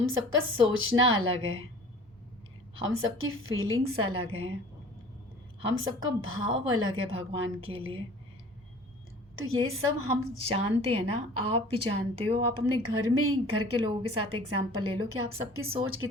सबका सोचना अलग है, हम सबकी फीलिंग्स अलग हैं, हम सबका भाव अलग है भगवान के लिए। तो ये सब हम जानते हैं ना, आप भी जानते हो। आप अपने घर में ही घर के लोगों के साथ एग्जांपल ले लो कि आप सबकी सोच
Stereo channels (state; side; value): normal; both; correlation 0.46